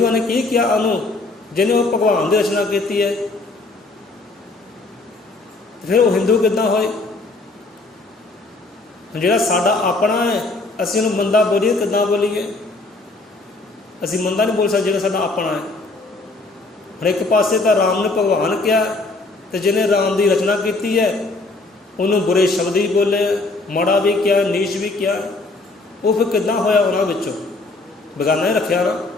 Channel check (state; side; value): quieter; right; 3.3 dB